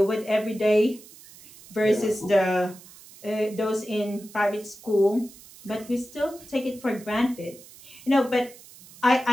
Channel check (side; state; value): right; noise; hiss, 21 dB below the sound